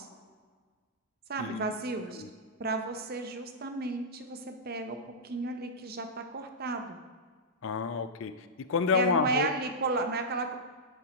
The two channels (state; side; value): normal; both; correlation -0.11